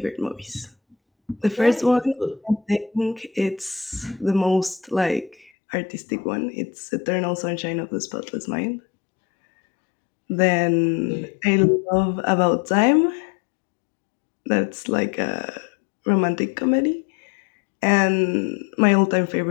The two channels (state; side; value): drops out; right; at 5.5 s